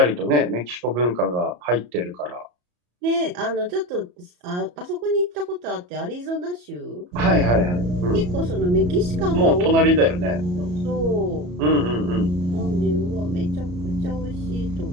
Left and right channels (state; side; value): late; left; 34 ms